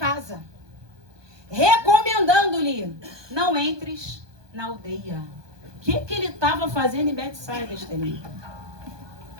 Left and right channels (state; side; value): late; left; 1.2 ms